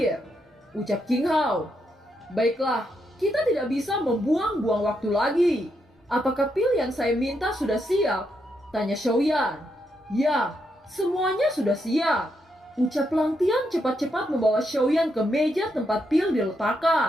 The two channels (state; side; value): normal; both; correlation 0.80